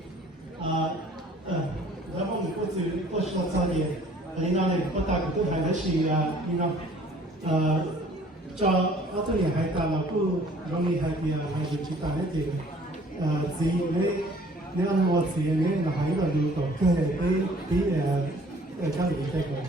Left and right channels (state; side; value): normal; both; correlation 0.54